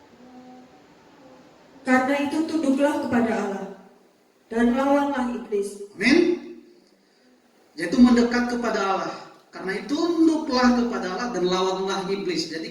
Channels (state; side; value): identical; both; correlation 1.00